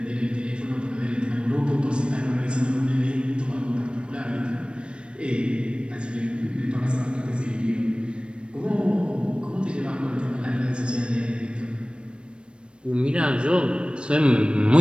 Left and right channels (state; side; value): late; left; 0.057 ms